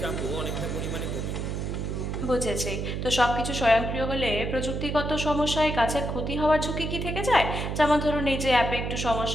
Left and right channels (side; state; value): right; noise; hum, 3 dB below the sound